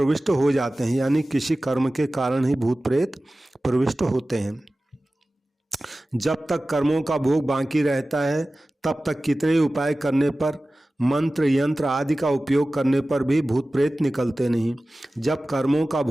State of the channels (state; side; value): normal; both; correlation 0.96